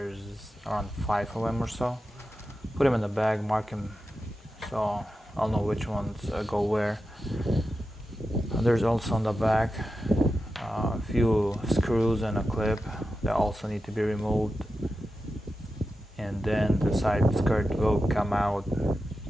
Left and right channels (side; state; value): both; normal; correlation 0.91